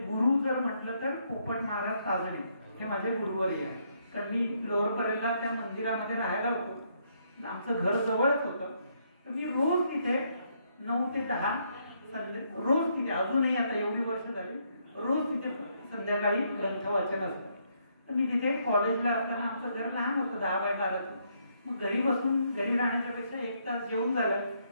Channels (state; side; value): inverted; both; correlation -0.73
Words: गुरु जर म्हटलं तर पोपट महाराज ताजणे हे माझे गुरुवरी आहे. तर मी लोअर परेलला त्या मंदिरामध्ये राहायला होतो, आमचं घर जवळच होतं. तर मी रोज तिथे 9 ते 10 रोज तिथे, अजूनही आता एवढी वर्ष झाली, रोज तिथे संध्याकाळी ग्रंथ वाचन असतं. तर मी तिथे कॉलेजला असताना, आमचं घर लहान होतं 10 बाय 12चं, मग घरी राहण्याच्या पेक्षा 1 तास जेवून झालं